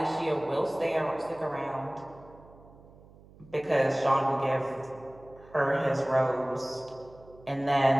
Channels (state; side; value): noise; right; hum, 23 dB below the sound